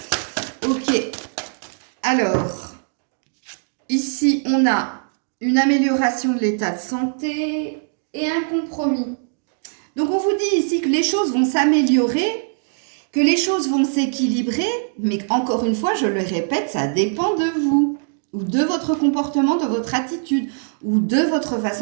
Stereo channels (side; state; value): left; silent; digital silence